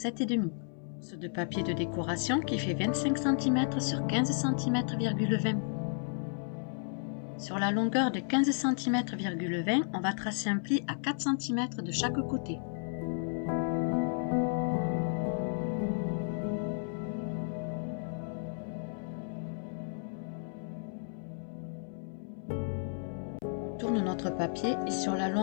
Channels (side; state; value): right; silent; 56 dB below the other